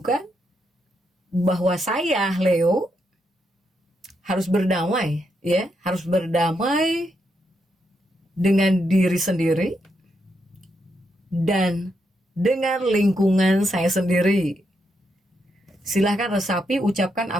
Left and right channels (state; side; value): normal; both; correlation 0.80